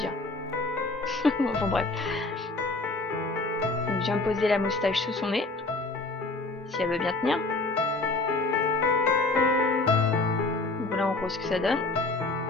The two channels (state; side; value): quieter; right; 3.3 dB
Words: Enfin bref. Donc je viens poser la moustache sous son nez. Si elle veut bien tenir. Donc voilà en gros ce que ça donne.